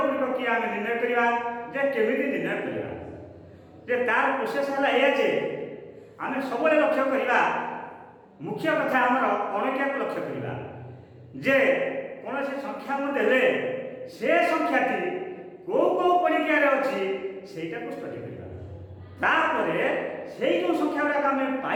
କିଏ ଆମେ ନିର୍ଣ୍ଣୟ କରିବା ଯେ କେମିତି ନିର୍ଣ୍ଣୟ କରିବା ଯେ ତାର ପ୍ରୋସେସ ହେଲା ଏଇଆ ଯେ ଆମେ ସବୁବେଳେ ଲକ୍ଷ୍ୟ କରିବା ମୁଖ୍ୟ କଥା ଆମର ଅଣକିଆକୁ ଲକ୍ଷ୍ୟ କରିବା ଯେ କୌଣସି ସଂଖ୍ୟା ମୁଁ ଦେଲେ ସେ ସଂଖ୍ୟାଟି କେଉଁ କେଉଁ ପଣିକିଆରେ ଅଛି ସେଇଟାକୁ ଷ୍ଟଡି କରିବା। ତାପରେ ସେଇ ଯେଉଁ ସଂଖ୍ୟା ଗୁଡ଼ାକ ଆମେ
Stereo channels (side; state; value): both; identical; correlation 1.00